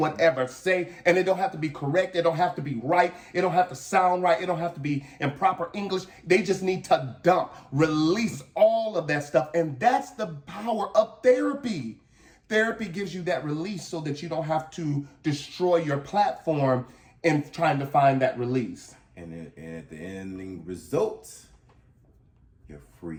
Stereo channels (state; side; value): identical; both; correlation 1.00